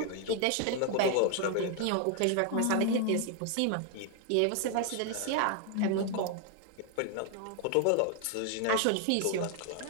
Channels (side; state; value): both; different; correlation 0.00